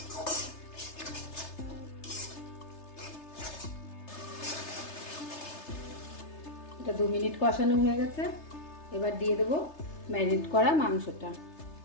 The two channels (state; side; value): late; right; 3.3 ms